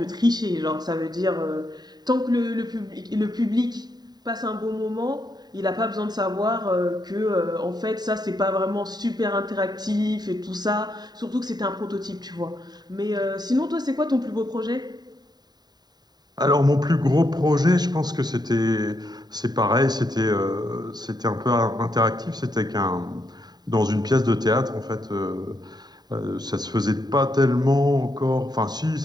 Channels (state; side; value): late; left; 0.20 ms